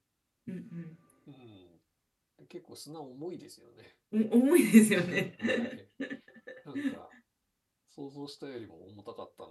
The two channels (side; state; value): both; identical; correlation 1.00